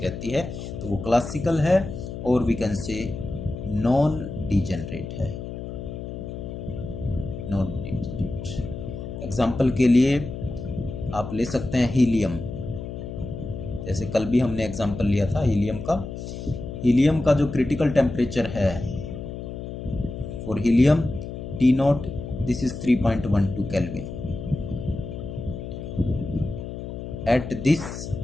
है, तो वो क्लासिकल है, और we can say non degenerate है, नॉन डीजेनरेट। एग्जाम्पल के लिए आप ले सकते हैं हीलियम, जैसे कल भी हमने एग्जाम्पल लिया था हीलियम का। हीलियम का जो क्रिटिकल टेम्परेचर है for helium T not, this is 3.12 kelvin. At this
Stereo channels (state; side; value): noise; left; hum, 8 dB below the sound